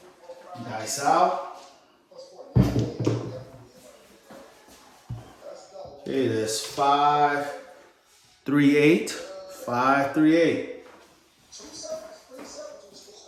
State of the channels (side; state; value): both; identical; correlation 1.00